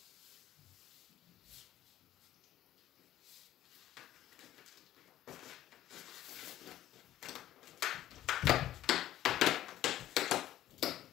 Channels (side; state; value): right; quieter; 13.2 dB